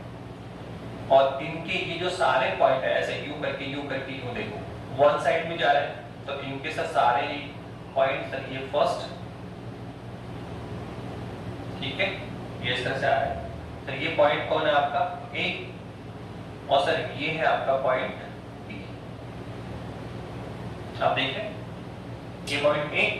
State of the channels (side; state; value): both; identical; correlation 1.00